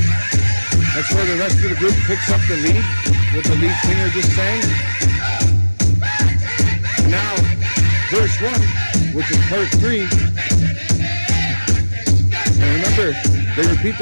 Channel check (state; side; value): inverted; both; correlation -1.00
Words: That's where the rest of the group picks up the lead, what the lead singer just sang. Now, verse 1, which is part 3. And remember, they repeat